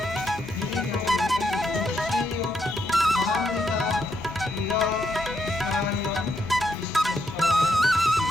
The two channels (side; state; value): both; normal; correlation 0.78